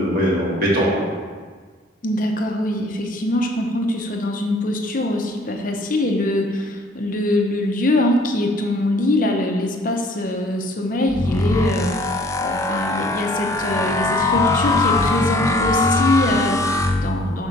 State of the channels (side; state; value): both; normal; correlation 0.56